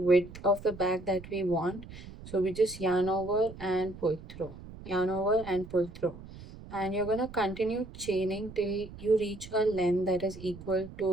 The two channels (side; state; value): right; noise; rumble, 15 dB below the sound